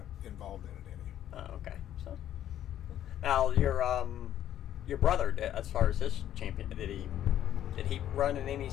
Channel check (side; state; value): right; quieter; 11.3 dB